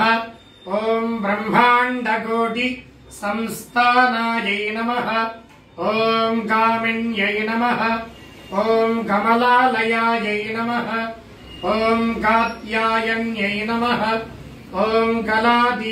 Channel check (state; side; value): identical; both; correlation 1.00